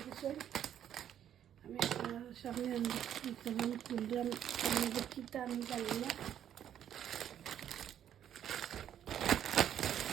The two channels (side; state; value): left; quieter; 10.1 dB